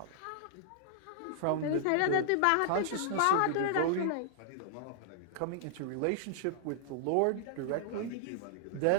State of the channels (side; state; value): both; different; correlation -0.01